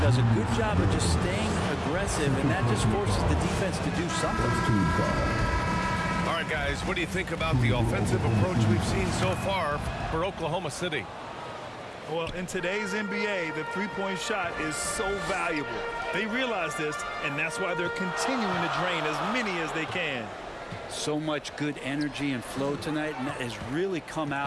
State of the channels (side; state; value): both; identical; correlation 1.00